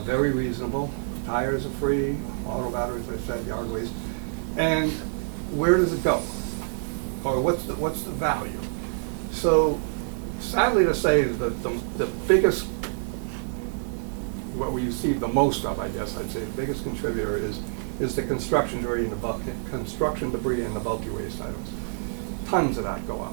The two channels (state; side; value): silent; left; digital silence